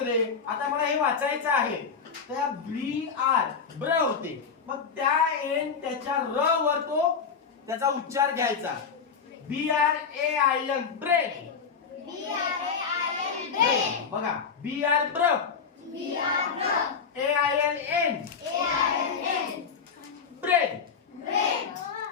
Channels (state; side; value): quieter; right; 6.0 dB